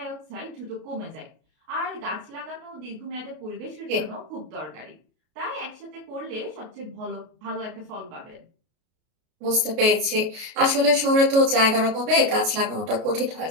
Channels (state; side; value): late; left; 33 ms